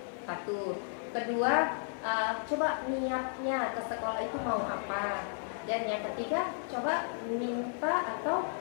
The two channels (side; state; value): right; silent; digital silence